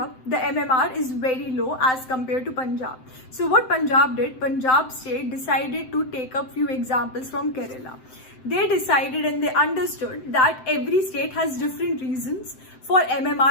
the MMR is very low as compared to Punjab. So what Punjab did, Punjab state decided to take up few examples from Kerala. They decided and they understood that every state has different reasons for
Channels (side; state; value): right; late; 7.8 ms